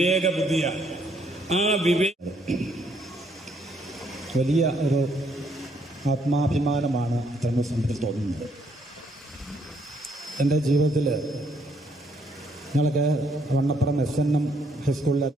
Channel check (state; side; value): normal; both; correlation 0.70